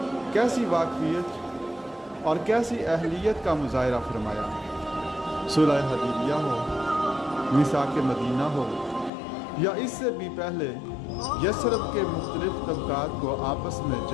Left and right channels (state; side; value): drops out; right; at 9.1 s